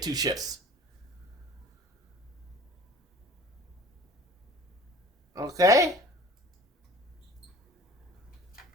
2 ships. Okay?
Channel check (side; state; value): both; normal; correlation 0.45